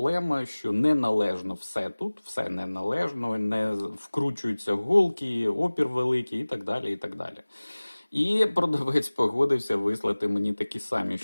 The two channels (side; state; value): both; inverted; correlation -1.00